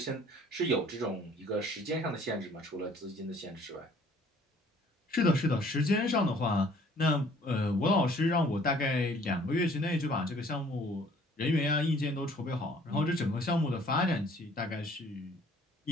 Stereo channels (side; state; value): both; normal; correlation 0.56